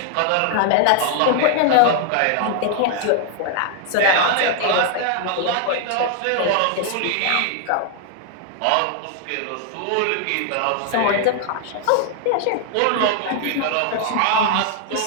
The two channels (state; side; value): different; both; correlation 0.00